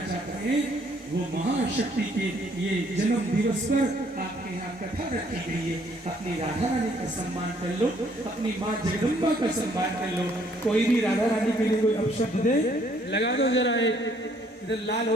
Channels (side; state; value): both; normal; correlation 0.65